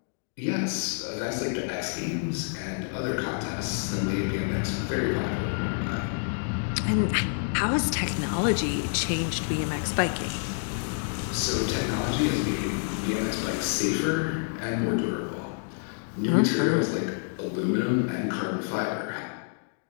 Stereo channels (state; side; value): silent; right; 59 dB below the other